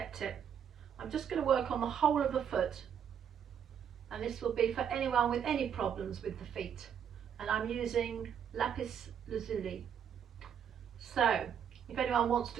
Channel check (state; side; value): quieter; left; 8.3 dB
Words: it. I'm just going to work on the whole of the foot, and this will be for anyone with any problems with the feet, and I'm using Lapis Lazuli. So if anyone wants